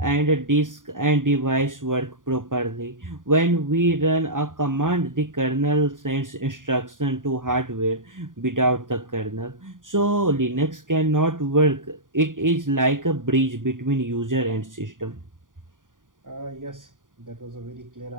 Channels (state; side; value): late; left; 0.89 ms